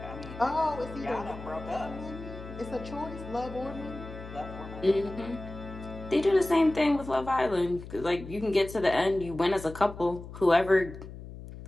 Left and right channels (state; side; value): noise; left; hum, 13 dB below the sound